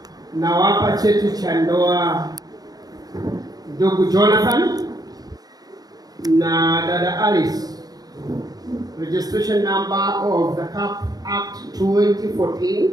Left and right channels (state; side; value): late; left; 0.19 ms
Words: nawapa cheti cha ndoa ndugu Jonathan na dada Alice. Registration number of the CAP Act 2014